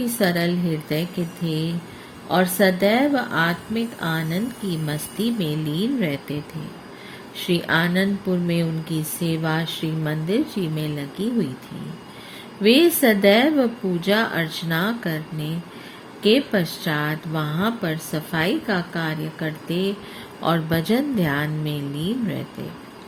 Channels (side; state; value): both; identical; correlation 1.00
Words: सरल हृदय के थे और सदैव आत्मिक आनंद की मस्ती में लीन रहते थे। श्री आनंदपुर में उनकी सेवा श्री मंदिर जी में लगी हुई थी। वे सदैव पूजा अर्चना करने के पश्चात वहां पर सफाई का कार्य करते और भजन ध्यान में लीन रहते।